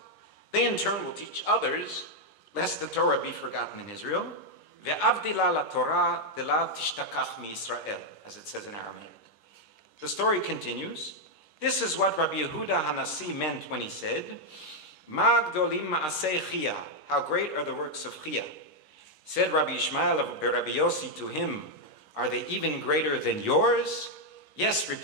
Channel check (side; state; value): right; late; 11 ms